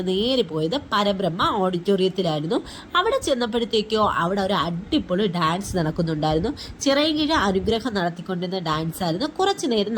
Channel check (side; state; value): both; identical; correlation 1.00